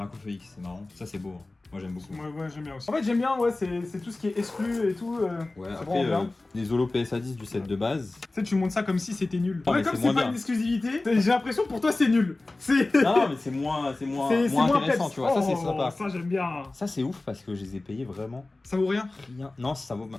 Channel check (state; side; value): quieter; right; 3.0 dB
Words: X, c'est marrant. Ça c'est beau, hein. Moi j'aime beaucoup. Ouais, j'aime bien aussi. En fait, j'aime bien, ouais, c'est tout ce qui est exclu et tout. Ouais, c'est après vraiment bien. les Holo PSA 10 du set de base. Tu sais, tu montes ça comme si c'était nul. Non, Ouais, mais comme c'est c'est moins pas bien. une exclusivité, j'ai l'impression que pour toi c'est nul. C'est. Non, mais c'est moins intéressant, peps. tu vois. Ça c'est Oh, sympa. Ça, j'aime bien. Ça c'est ouf parce que je les ai payés vraiment Ça vaut rien. rien. Non, ça vaut